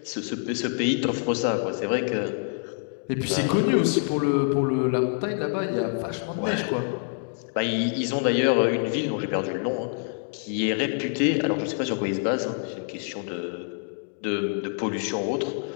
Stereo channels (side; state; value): right; silent; 59 dB below the other